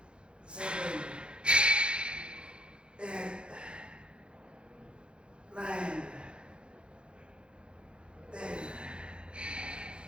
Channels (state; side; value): late; left; 0.054 ms